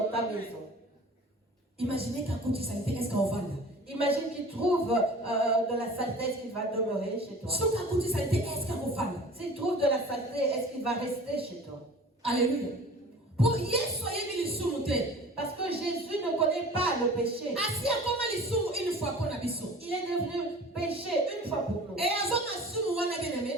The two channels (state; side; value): normal; both; correlation 0.43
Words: ta maison. Imaginez qu'un coup de saleté, est-ce qu'on va là? Imagine qu'il trouve de la saleté, est-ce qu'il va demeurer chez toi? S'il trouve de la saleté, est-ce qu'il va rester chez toi? Alléluia. Pour Yesu ayemi lisumu te. Parce que Jésus ne connaît pas le péché. Asi akoma lisumu une fois pour na biso. Il est devenu péché une fois pour nous. Et azoma sumu wana